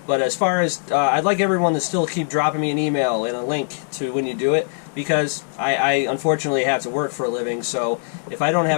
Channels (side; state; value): right; silent; digital silence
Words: But as far as, I'd like everyone to still keep dropping me an email and a link to when you do it, because I unfortunately have to work for a living, so if I don't